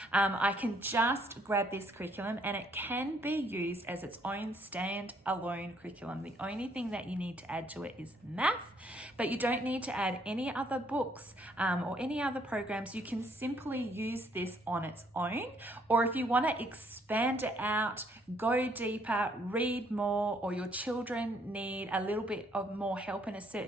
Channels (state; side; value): normal; both; correlation 0.67